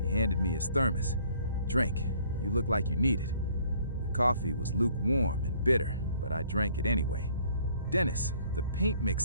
handed me his thermos. "Drink. You look like you need it." The coffee was lukewarm and bitter, but I drank it anyway. "Dennis, the paint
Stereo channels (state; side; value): inverted; both; correlation -0.59